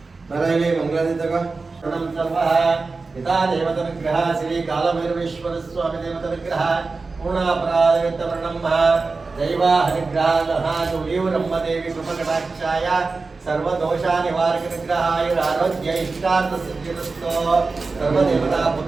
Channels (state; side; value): quieter; left; 4.0 dB